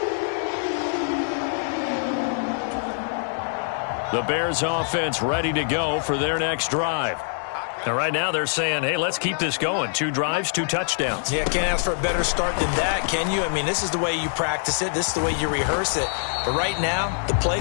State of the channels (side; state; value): right; silent; digital silence